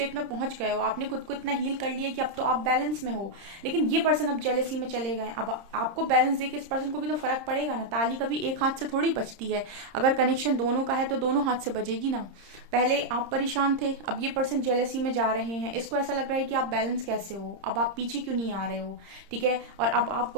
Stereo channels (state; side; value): late; left; 30 ms